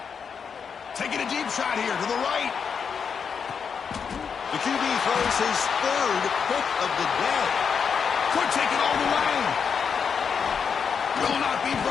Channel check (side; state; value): right; quieter; 6.5 dB